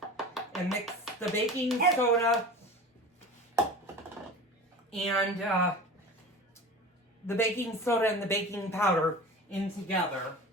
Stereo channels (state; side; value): normal; both; correlation 0.35